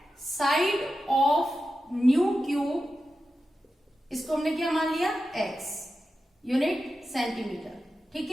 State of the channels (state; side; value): normal; both; correlation 0.91